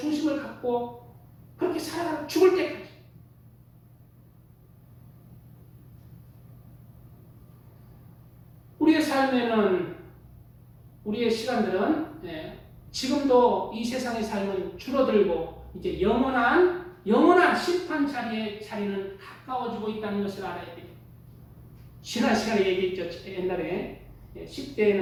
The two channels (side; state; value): both; identical; correlation 1.00